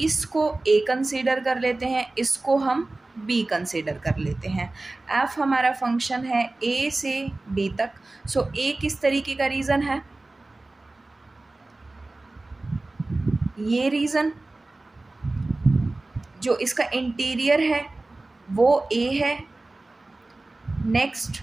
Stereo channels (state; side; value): quieter; left; 3.0 dB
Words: ए कंसीडर कर लेते हैं, इसको हम बी कंसीडर कर लेते हैं। एफ हमारा फंक्शन है ए से बी तक। सो ए किस तरीके का रीजन है, ये रीजन जो इसका इंटीरियर है वो ए है। Next